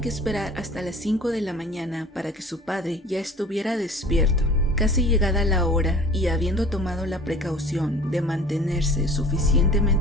esperar hasta las 5 de la mañana para que su padre ya estuviera despierto. Casi llegada la hora y habiendo tomado la precaución de mantenerse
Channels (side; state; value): both; normal; correlation 0.45